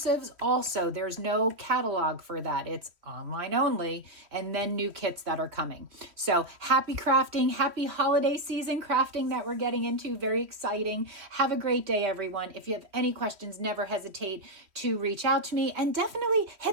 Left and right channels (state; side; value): late; left; 3.1 ms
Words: also. There's no catalog for that. It's online only, and then new kits that are coming. So happy crafting, happy holiday season crafting that we're getting into. Very exciting. Have a great day, everyone. If you have any questions, never hesitate to reach out to me, and definitely